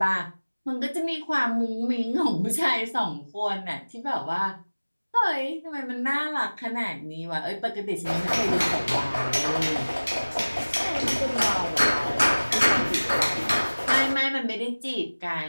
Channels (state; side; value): inverted; both; correlation -1.00